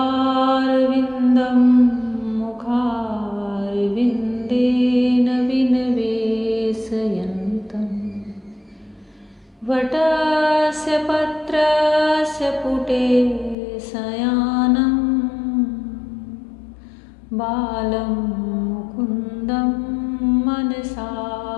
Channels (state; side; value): drops out; right; at 13.6 s